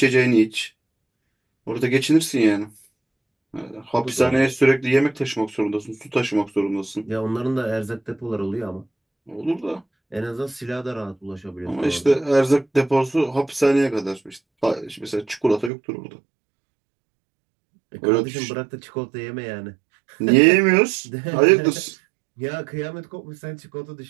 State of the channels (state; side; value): drops out; left; at 15.7 s